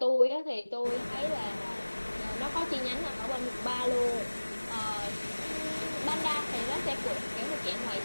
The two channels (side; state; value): both; inverted; correlation -1.00